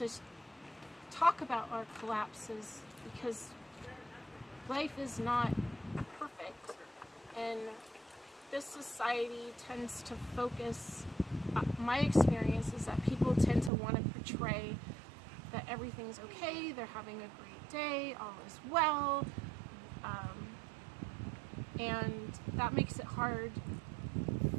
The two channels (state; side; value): drops out; left; at 13.7 s